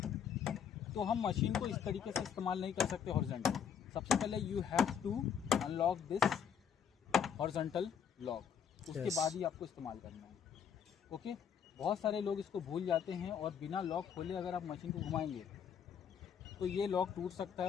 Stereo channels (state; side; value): quieter; right; 7.8 dB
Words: तो हम मशीन को इस तरीके से इस्तेमाल नहीं कर सकते हॉरिजॉन्टल। सबसे पहले you have to unlock this horizontal lock, उसके बाद ही आपको इस्तेमाल करना है। ओके, बहुत सारे लोग इसको भूल जाते हैं और बिना लॉक खोले अगर आप मशीन को घुमाएंगे तो ये लॉक टूट सकता है